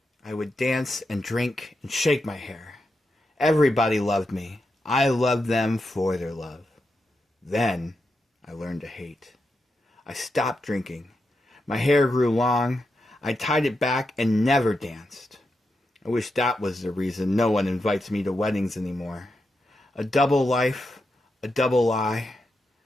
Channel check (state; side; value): normal; both; correlation 0.86